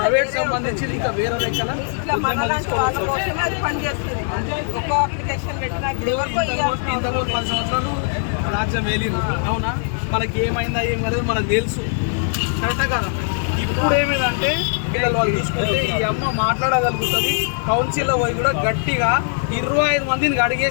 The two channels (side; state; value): right; silent; 65 dB below the other